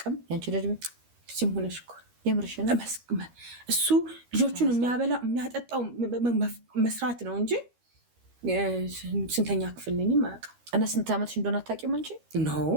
ያንቺ እድሜ ሲም ሆነሽ እኮ የምርሽና እሱ ልጆቹን የሚያበላ የሚያጠጣው መስራት ነው እንጂ ስንተኛ ክፍል ነኝም አያውቅም እና ስንት ዓመትሽ እንደሆነ አታውቂም አንቺ ነው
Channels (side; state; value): left; late; 13 ms